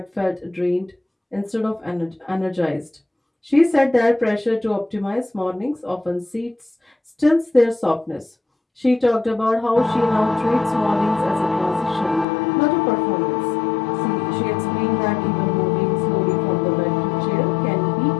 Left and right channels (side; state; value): right; drops out; at 12.2 s